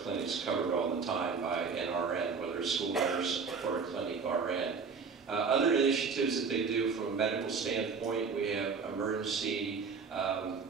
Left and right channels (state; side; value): quieter; left; 5.3 dB